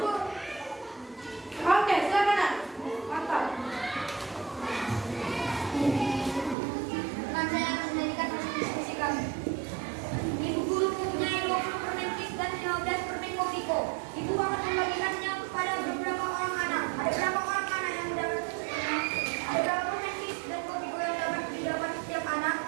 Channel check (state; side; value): drops out; left; at 6.6 s